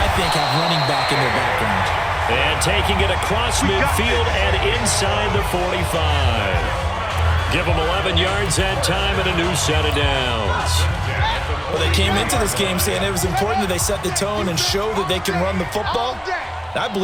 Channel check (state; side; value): identical; both; correlation 1.00